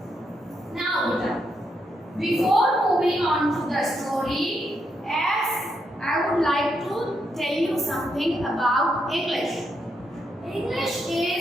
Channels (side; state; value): both; normal; correlation 0.80